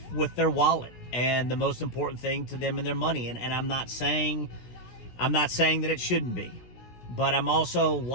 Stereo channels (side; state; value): right; late; 17 ms